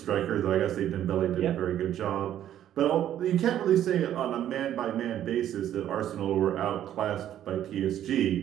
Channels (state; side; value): quieter; left; 11.3 dB